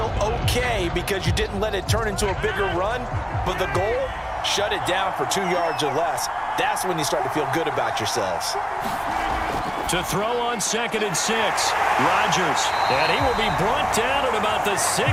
okay because you didn't let it turn into a bigger run, but the goal, shut it down for 2 yards or less. That's when you start to feel good about yourselves. To throw on 2nd and 6, Rodgers, and he will be brought down at about the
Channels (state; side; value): identical; both; correlation 1.00